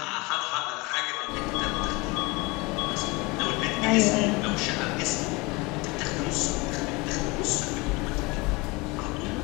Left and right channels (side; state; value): right; quieter; 25.1 dB